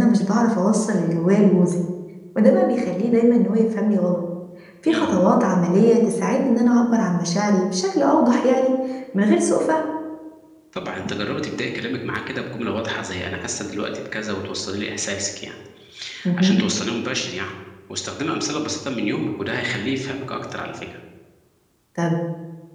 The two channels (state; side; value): identical; both; correlation 1.00